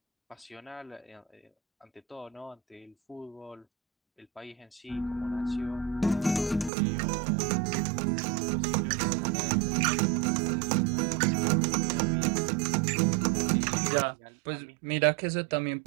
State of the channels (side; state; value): left; drops out; at 6.7 s